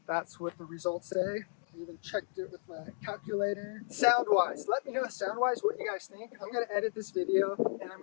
that's what the results say. I even checked it with my calculator. Sound-wise, let me know sound-wise what you guys think. I'm gonna edit this video and I'm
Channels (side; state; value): right; silent; digital silence